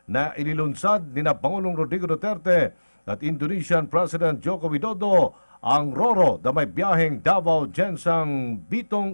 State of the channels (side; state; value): both; inverted; correlation -1.00